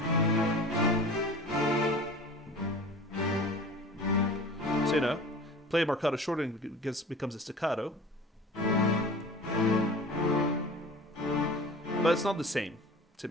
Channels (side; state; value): both; normal; correlation 0.40